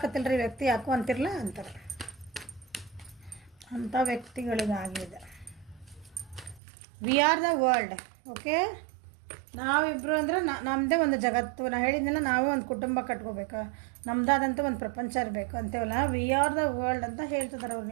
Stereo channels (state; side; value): drops out; left; at 6.6 s